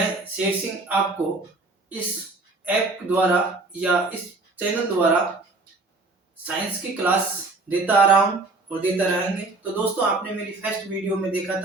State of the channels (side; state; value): left; quieter; 3.4 dB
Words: शेर सिंह आपको इस ऐप द्वारा या इस चैनल द्वारा साइंस की क्लास देता आ रहा हूँ और देता रहेंगे। तो दोस्तों, आपने मेरी फर्स्ट वीडियो में देखा